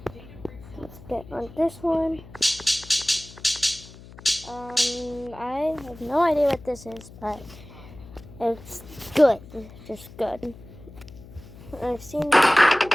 Let's get on this one. I have no idea what this is, but it's good. Just good. I've seen it already.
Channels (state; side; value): noise; left; hum, 18 dB below the sound